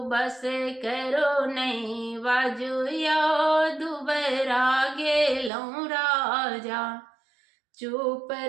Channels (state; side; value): drops out; left; at 5.5 s